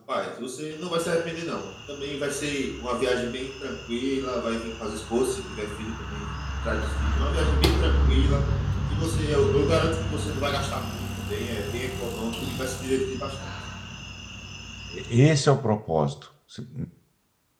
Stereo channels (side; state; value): both; identical; correlation 1.00